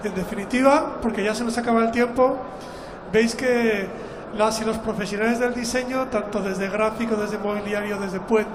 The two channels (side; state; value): both; identical; correlation 1.00